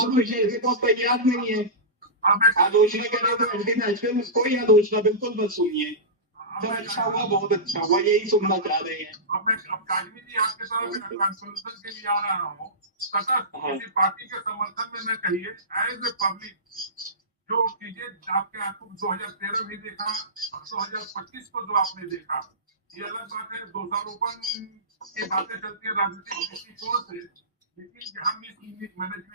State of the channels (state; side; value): normal; both; correlation -0.19